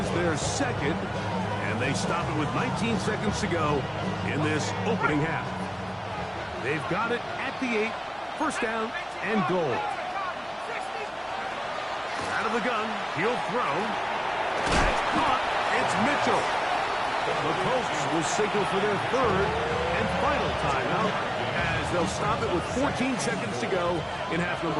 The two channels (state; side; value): identical; both; correlation 1.00